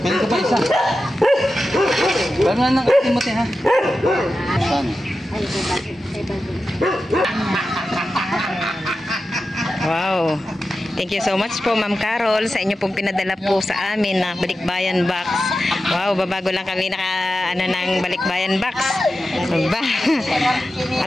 Meron ka pa isa. Paano na Timothy ha? Wow. Thank you so much po Ma'am Carol sa inyo pong pinadala po sa amin na balikbayan box. Wow, babago lang kami ng balikbayan box. Ba?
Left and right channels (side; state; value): both; normal; correlation 0.92